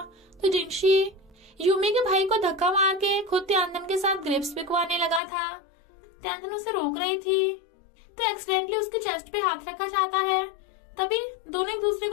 तो जिंगशी यूमी के भाई को धक्का मार के खुद त्यानतन के साथ ग्रेप्स बिकवाने लगा था। त्यानतन उसे रोक रही थी, तो एक्सीडेंटली उसके चेस्ट पे हाथ रखा जाता है। तभी दोनों एक दूसरे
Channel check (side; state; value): right; drops out; at 5.2 s